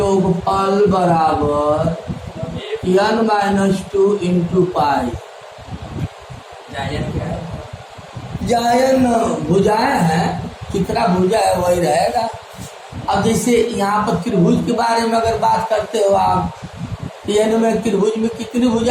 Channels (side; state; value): both; identical; correlation 1.00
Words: बराबर n-2 इंटू पाई। जायन भुजाएं हैं, कितना भुजा है वही रहेगा। अब जैसे यहाँ पर त्रिभुज के बारे में अगर बात करते हो आप, n में त्रिभुज में कितनी